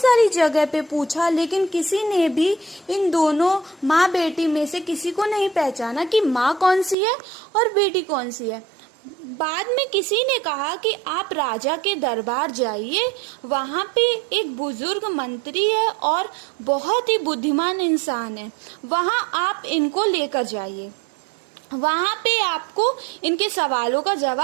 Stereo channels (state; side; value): drops out; left; at 7.0 s